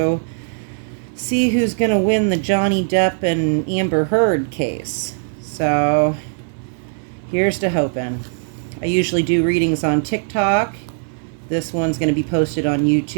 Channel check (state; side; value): silent; left; 64 dB below the other